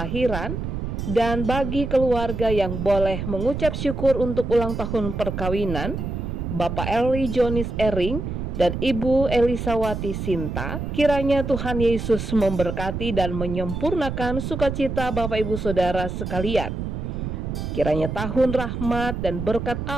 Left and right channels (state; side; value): noise; right; rumble, 4 dB below the sound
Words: dan bagi keluarga yang boleh mengucap syukur untuk ulang tahun perkawinan, Bapak Eli Jonis Ering dan Ibu Elisawati Sinta. Kiranya Tuhan Yesus memberkati dan menyempurnakan sukacita Bapak Ibu Saudara sekalian. Kiranya tahun rahmat dan berkat